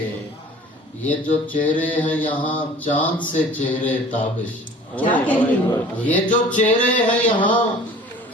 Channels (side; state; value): both; normal; correlation 0.46